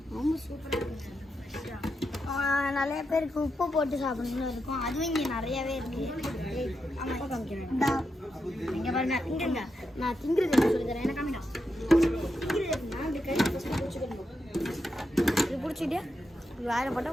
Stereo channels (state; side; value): normal; both; correlation 0.85